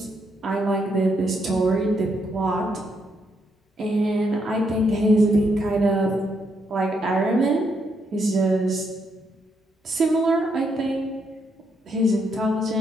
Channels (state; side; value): normal; both; correlation 0.77